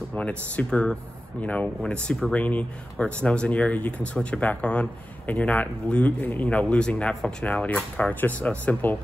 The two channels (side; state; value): both; normal; correlation 0.94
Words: when it's super, when it's super rainy or it snows in the area, you can switch it back on, and you're not losing that functionality of the car. It's just a simple